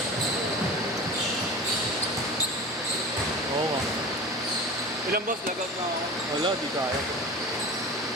Oo nga. Ilang boss, lagot na ako. Wala, di kaya.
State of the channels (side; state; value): both; normal; correlation 0.34